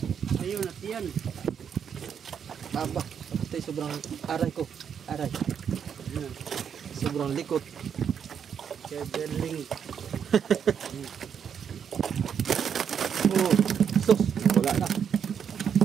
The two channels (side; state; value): left; quieter; 7.7 dB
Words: Ayun, natiyan. Aba, ito'y sobrang aray ko. Aray. Sobrang likot. Kebeling. Oh, sus! Wala na.